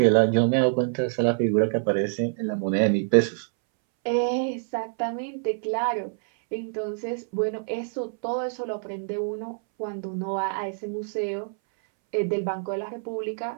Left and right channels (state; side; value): silent; left; 61 dB below the other